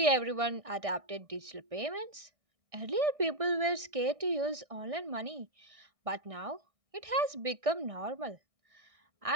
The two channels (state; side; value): late; left; 1.6 ms